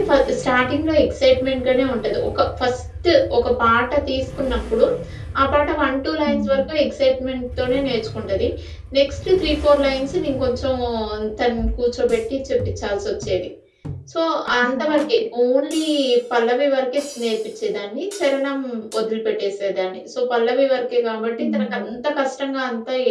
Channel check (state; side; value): identical; both; correlation 1.00